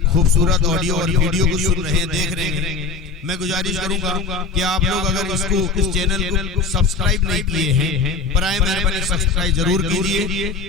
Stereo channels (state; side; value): quieter; right; 4.5 dB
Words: खूबसूरत ऑडियो और वीडियो को सुन रहे हैं, देख रहे हैं, मैं गुजारिश करूंगा कि आप लोग अगर इसको इस चैनल को सब्सक्राइब नहीं किए हैं, बराए मेहरबानी सब्सक्राइब जरूर